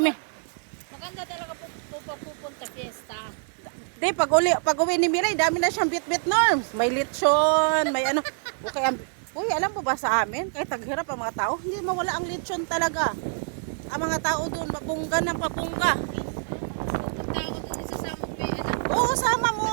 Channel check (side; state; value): left; silent; 61 dB below the other